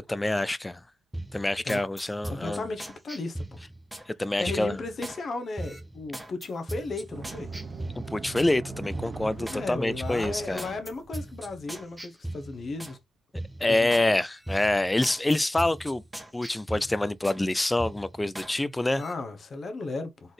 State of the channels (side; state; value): both; normal; correlation 0.97